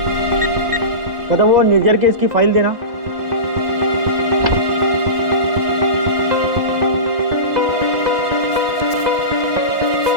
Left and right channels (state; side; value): late; left; 2.0 ms